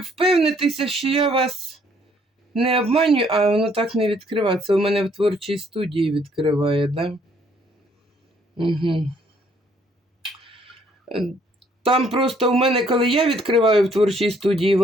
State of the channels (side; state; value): both; normal; correlation 0.65